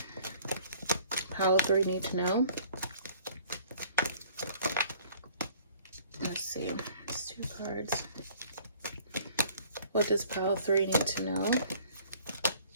pile 3 need to know? Let's see. It's 2 cards. What does pile 3 need to know?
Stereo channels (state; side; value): inverted; both; correlation -0.54